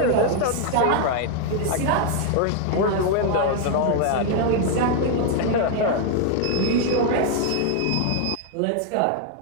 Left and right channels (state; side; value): different; both; correlation 0.00